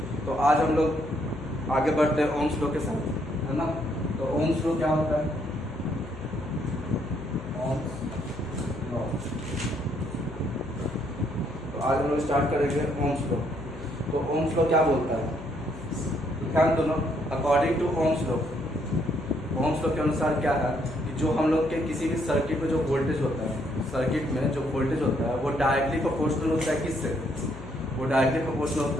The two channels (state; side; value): noise; left; hum, 14 dB below the sound